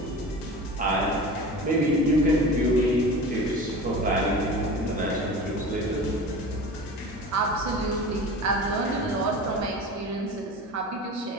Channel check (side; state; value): both; normal; correlation 0.34